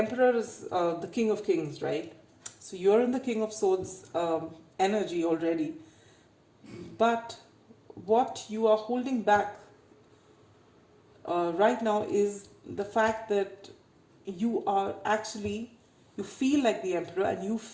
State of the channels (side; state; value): both; identical; correlation 1.00